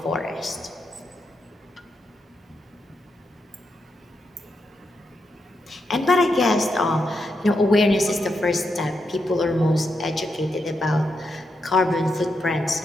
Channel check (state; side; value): normal; both; correlation 0.83